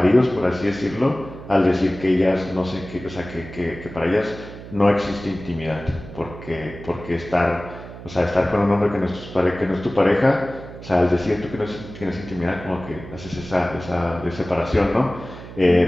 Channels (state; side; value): noise; right; hum, 14 dB below the sound